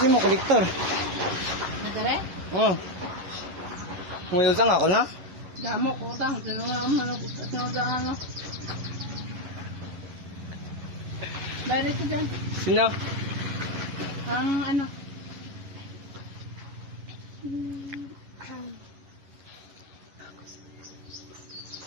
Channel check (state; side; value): late; left; 11 ms